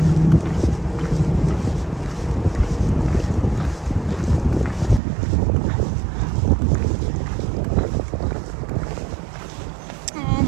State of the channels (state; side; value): drops out; left; at 5.0 s